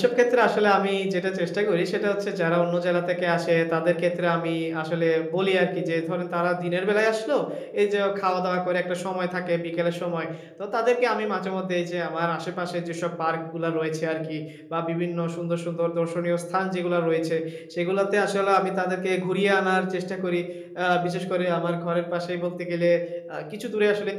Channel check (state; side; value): identical; both; correlation 1.00